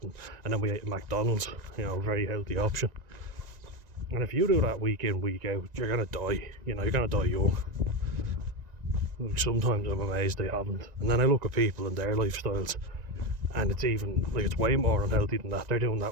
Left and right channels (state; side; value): late; left; 1.9 ms